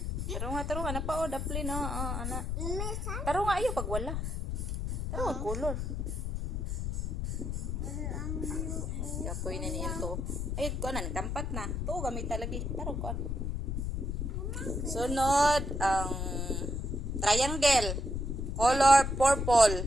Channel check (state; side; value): noise; left; rumble, 2 dB below the sound